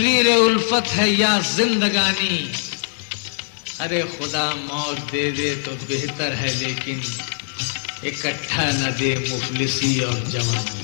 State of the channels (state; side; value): silent; right; 64 dB below the other